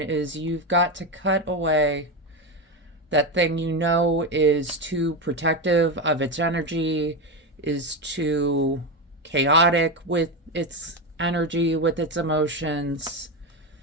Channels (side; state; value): both; normal; correlation 0.14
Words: you've got to cut away that thing you know is too protective of its energy, is too chaotic with its energy, with its emotions.